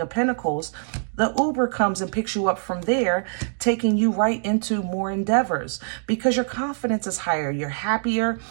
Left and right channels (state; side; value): silent; left; digital silence